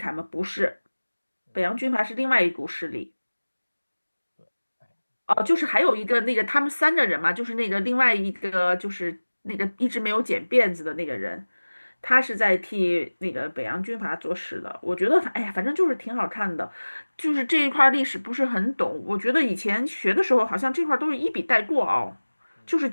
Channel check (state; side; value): inverted; both; correlation -1.00